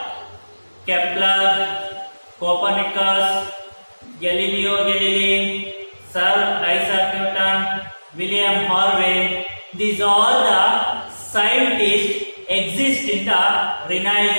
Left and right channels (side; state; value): both; inverted; correlation -1.00